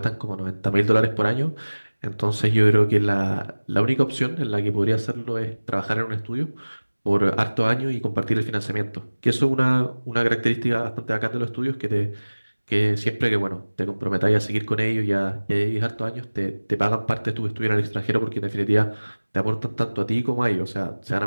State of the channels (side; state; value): both; inverted; correlation -1.00